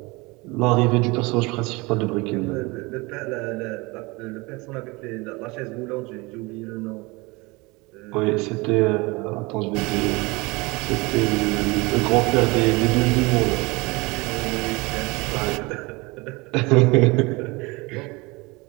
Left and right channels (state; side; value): quieter; left; 24.7 dB